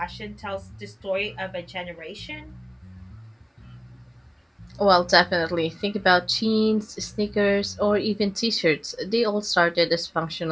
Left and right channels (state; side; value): identical; both; correlation 1.00